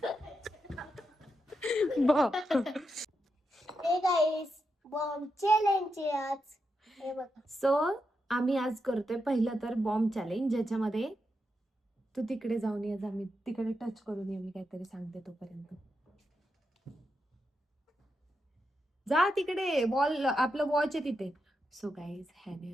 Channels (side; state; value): both; normal; correlation 0.85